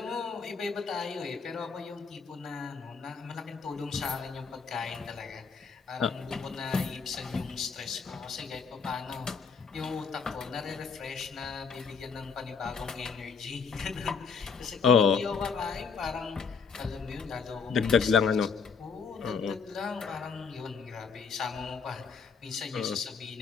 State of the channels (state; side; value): quieter; right; 5.7 dB